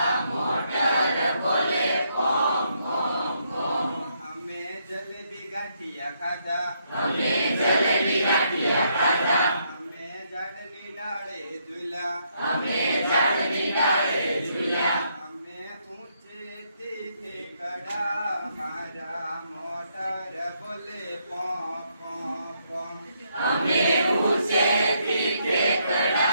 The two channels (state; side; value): inverted; both; correlation -0.74